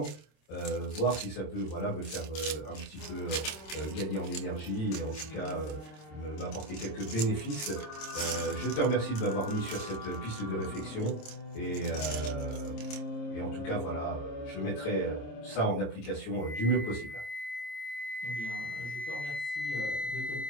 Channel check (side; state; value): right; late; 26 ms